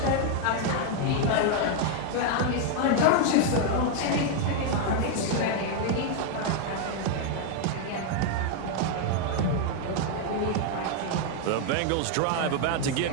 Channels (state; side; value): different; both; correlation 0.00